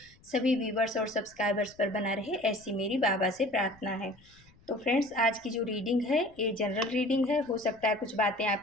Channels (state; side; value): noise; left; rumble, 28 dB below the sound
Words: सभी व्यूवर्स और सब्सक्राइबर्स पर बना रहे, ऐसी मेरी बाबा से प्रार्थना है। तो फ्रेंड्स, आज की जो रीडिंग है ये जनरल रीडिंग है। हो सकता है कुछ बातें